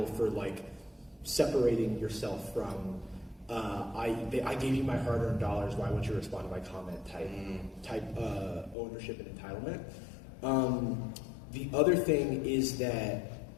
for like separating yourself from I gave you my hard-earned dollars, why wouldn't you respond to my comment type ownership and entitlement. The other thing is that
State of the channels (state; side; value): drops out; right; at 8.8 s